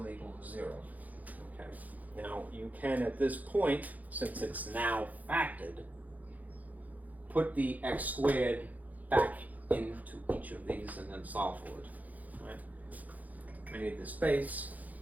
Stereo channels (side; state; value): left; late; 0.079 ms